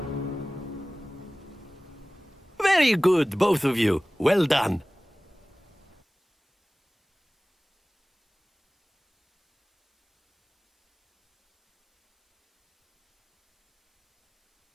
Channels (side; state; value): both; normal; correlation 0.98